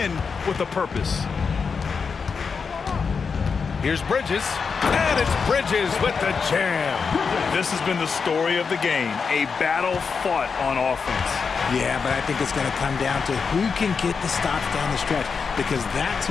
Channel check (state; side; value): quieter; right; 5.5 dB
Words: with a purpose. Here's Bridges, and it's Bridges with the jam. This has been the story of the game, a battle fought on offense. Yeah, but I think it's going to come down to who can get the stops down the stretch, because that's